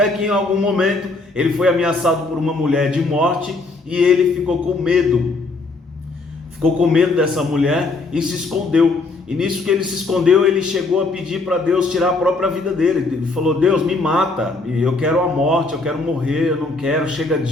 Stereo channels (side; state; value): right; quieter; 3.5 dB